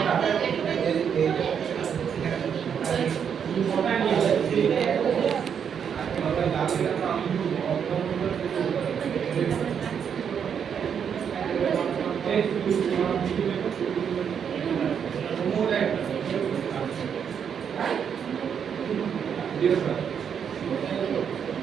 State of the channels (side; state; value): left; quieter; 7.6 dB